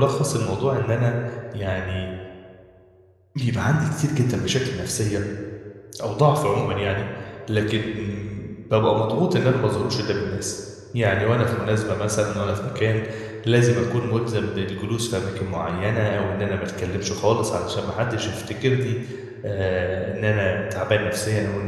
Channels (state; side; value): identical; both; correlation 1.00